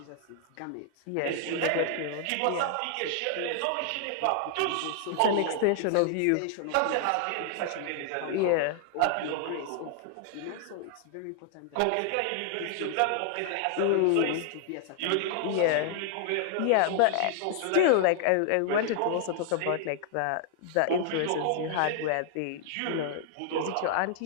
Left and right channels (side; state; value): both; different; correlation 0.00